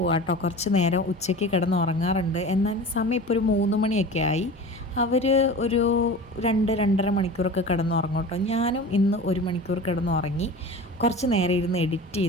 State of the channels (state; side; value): normal; both; correlation 0.35